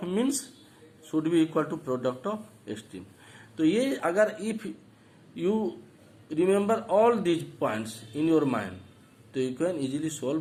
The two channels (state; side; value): identical; both; correlation 1.00